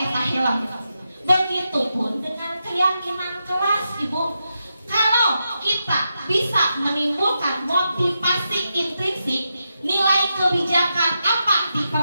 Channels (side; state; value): both; inverted; correlation -0.87